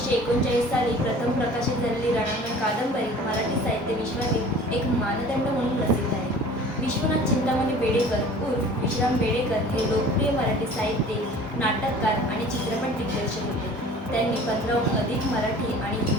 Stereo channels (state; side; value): normal; both; correlation 0.46